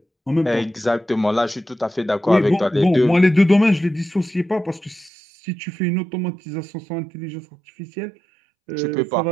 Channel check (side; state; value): left; drops out; at 5.1 s